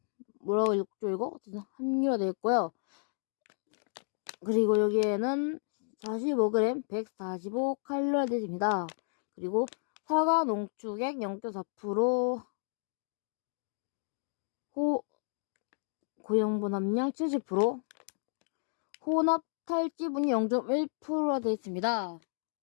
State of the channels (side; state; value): right; silent; digital silence